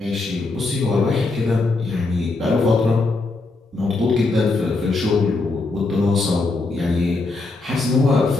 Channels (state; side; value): quieter; right; 3.4 dB